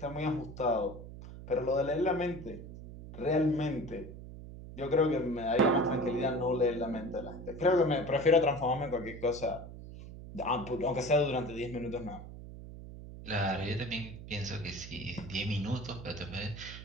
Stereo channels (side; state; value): right; noise; hum, 13 dB below the sound